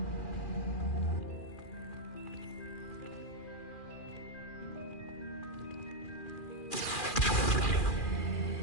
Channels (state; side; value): late; right; 2.4 ms